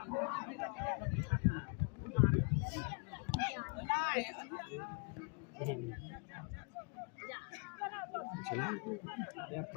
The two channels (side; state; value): right; quieter; 37.8 dB